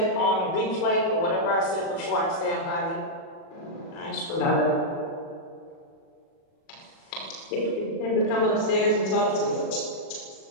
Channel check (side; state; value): right; late; 37 ms